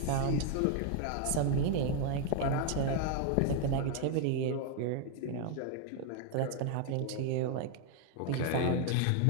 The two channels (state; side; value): different; both; correlation 0.01